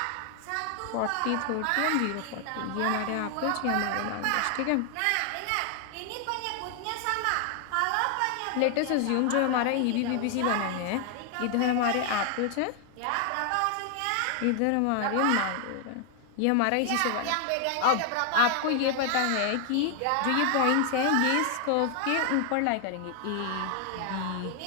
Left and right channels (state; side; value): different; both; correlation 0.00